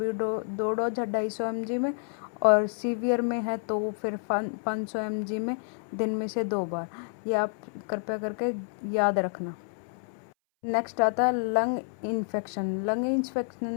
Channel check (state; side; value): silent; right; 58 dB below the other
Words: 2 डोज है 250 mg में, और सीवियर में है तो फिर 500 mg में दिन में से 2 बार। ये आप कृपया करके याद रखना। नेक्स्ट आता है लंग इन्फेक्शन। लंग इन्फेक्शन